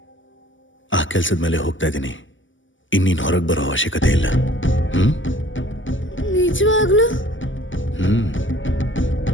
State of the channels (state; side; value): late; right; 0.56 ms